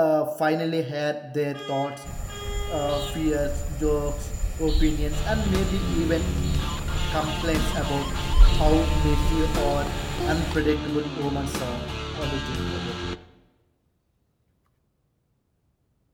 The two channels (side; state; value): both; identical; correlation 1.00